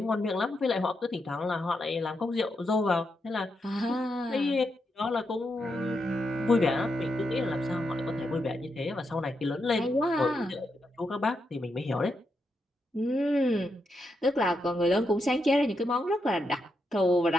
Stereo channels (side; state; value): both; normal; correlation 0.83